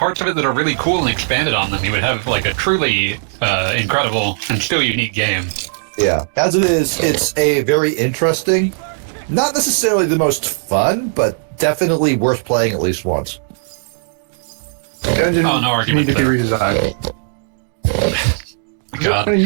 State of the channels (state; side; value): silent; left; digital silence